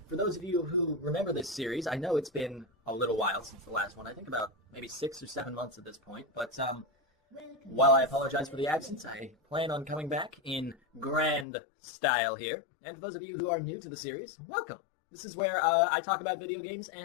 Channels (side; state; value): right; drops out; at 11.5 s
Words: For those of you who remember this series, I know it's been a little while since the last one. I think about maybe 6 or 7 months at this point, but while I apologize for the absence, I plan on coming back in grand style here. And for those of you who are new to the series, welcome. This is where I talk about video games